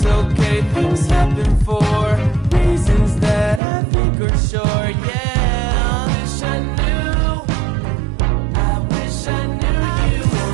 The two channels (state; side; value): drops out; left; at 3.6 s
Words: okay, things happen for reasons that I think are sure. Yeah, I wish I knew. I wish I knew you